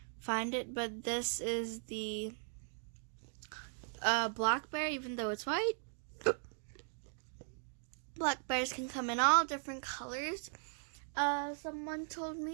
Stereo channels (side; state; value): left; silent; digital silence